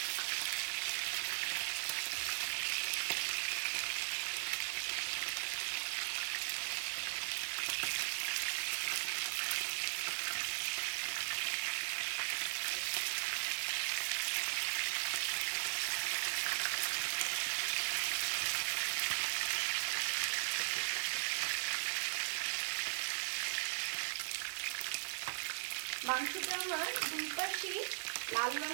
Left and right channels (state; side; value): silent; left; digital silence